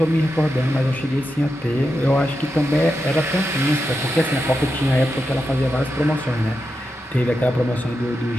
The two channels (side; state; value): both; normal; correlation 0.88